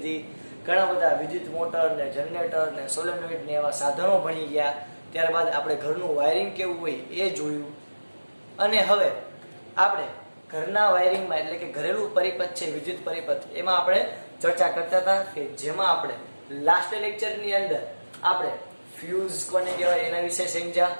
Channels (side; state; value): both; inverted; correlation -1.00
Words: ઘણા બધા વિદ્યુત મોટર ને જનરેટર ને સોલેનોઇડ ને એવા સાધનો ભણી ગયા. ત્યારબાદ આપણે ઘરનું વાયરિંગ કેવું હોય એ જોયું. અને હવે આપણે ઘરના વાયરિંગમાં એટલે કે ઘરેલું પરિપથ છે વિદ્યુત પરિપથ, એમાં આપણે ચર્ચા કરતા હતા કે જેમાં આપણે લાસ્ટ લેક્ચરની અંદર આપણે ફ્યુઝ કોને કહેવાય એના વિશે સમજ્યા,